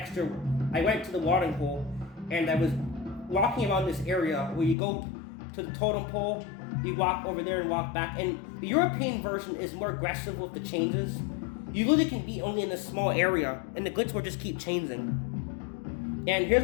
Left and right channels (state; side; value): drops out; right; at 4.8 s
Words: I went to the watering hole and I was walking around this area where you go to the totem pole, you walk over there and walk back. And the European version is more aggressive with the changes. You really can be only in a small area and the glitch will just keep changing. And here's